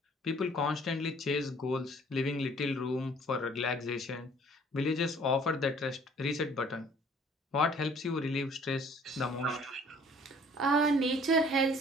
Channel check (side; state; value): both; normal; correlation 0.55